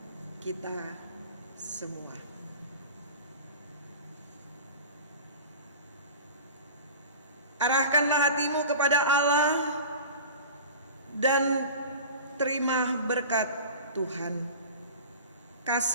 kita semua. Arahkanlah hatimu kepada Allah dan terima berkat Tuhan.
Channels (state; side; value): inverted; both; correlation -0.36